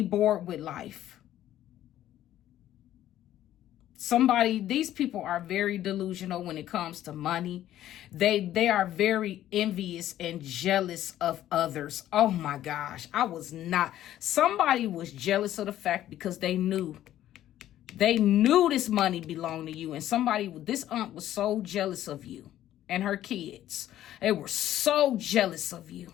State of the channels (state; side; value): quieter; right; 12.7 dB